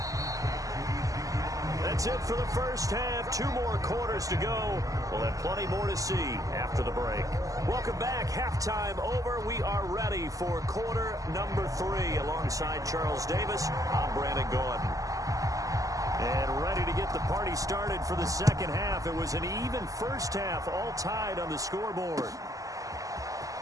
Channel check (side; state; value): left; late; 0.17 ms